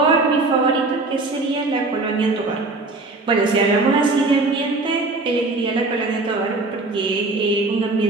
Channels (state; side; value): quieter; left; 3.3 dB